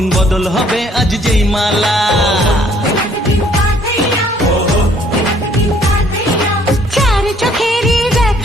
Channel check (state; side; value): normal; both; correlation 0.61